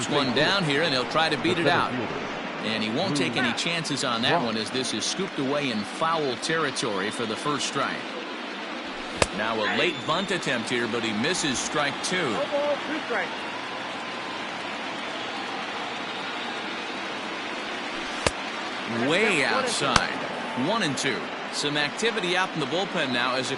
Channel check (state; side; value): identical; both; correlation 1.00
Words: one down here, and he'll try to beat it out. And he won't take any chances on that one as this is scooped away in foul territory for the first strike. Now a late bunt attempt here, but he misses strike two. No ball, 2 strikes. Way outside. 1-2. Some activity out in the bullpen now as a